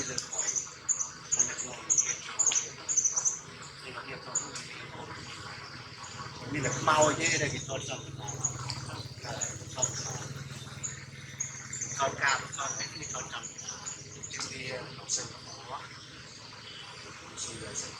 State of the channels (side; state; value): both; identical; correlation 1.00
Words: lên khỏi mình là mau chứ đây thì thôi xong con cao con ấy thì con trồng trên đi học sinh quá